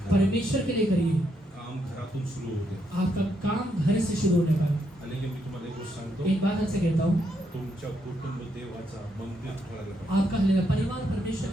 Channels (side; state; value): both; normal; correlation 0.78